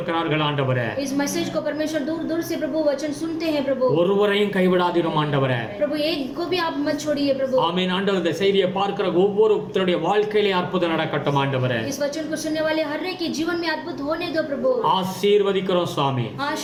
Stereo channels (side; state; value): both; identical; correlation 1.00